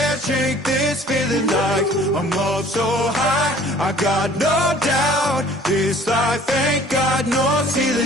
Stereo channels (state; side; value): normal; both; correlation 0.52